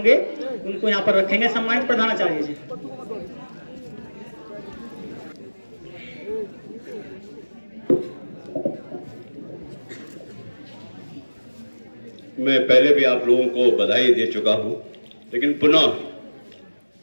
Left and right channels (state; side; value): inverted; both; correlation -1.00